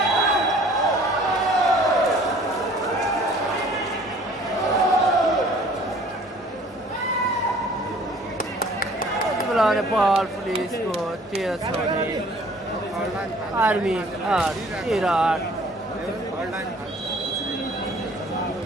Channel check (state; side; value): normal; both; correlation 0.53